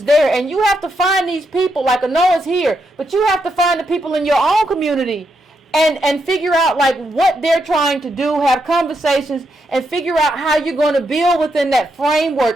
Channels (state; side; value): normal; both; correlation 0.81